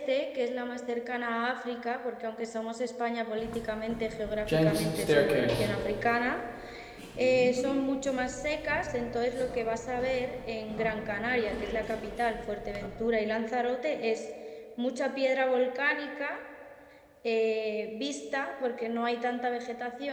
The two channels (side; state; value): both; identical; correlation 1.00